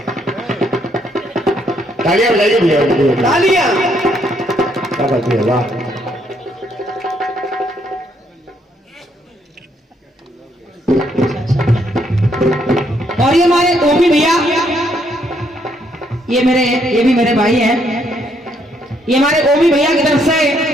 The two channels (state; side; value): normal; both; correlation 0.72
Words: तालियां बजाइए भैया। तालियां। क्या बात है, वाह। और ये हमारे ओमी भैया, ये भी मेरे भाई हैं। ये हमारे ओमी भैया की तरफ से